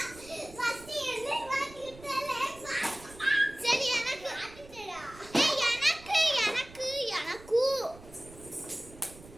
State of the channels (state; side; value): noise; right; rumble, 20 dB below the sound